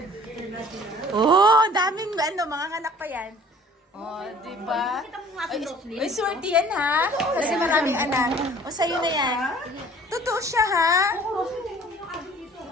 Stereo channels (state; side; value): normal; both; correlation 0.51